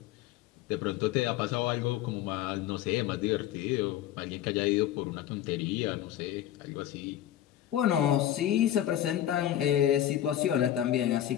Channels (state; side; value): quieter; right; 11.9 dB